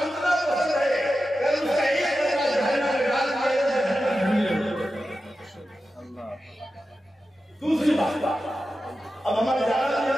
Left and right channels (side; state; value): both; normal; correlation 0.92